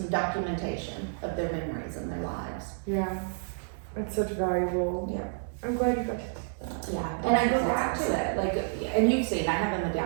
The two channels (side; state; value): left; silent; digital silence